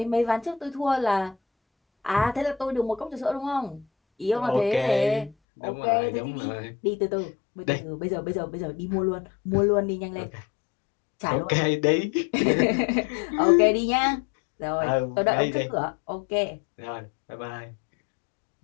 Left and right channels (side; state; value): right; drops out; at 5.4 s